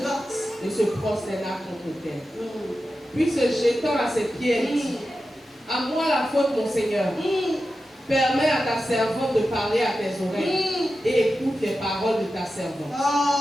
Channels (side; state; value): both; normal; correlation 0.92